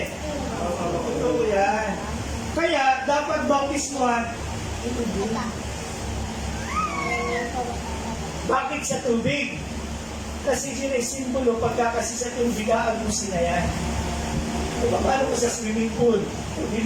Totoo yan. Kaya, dapat bautismuhan. Bakit sa tubig? Kasi yun ay simbolo, pagka kasi sa tubig, aagusin na yan. Diba, paano ko sa swimming pool?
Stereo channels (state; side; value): identical; both; correlation 1.00